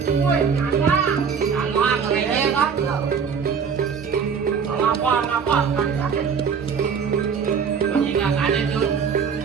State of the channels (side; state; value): left; quieter; 6.5 dB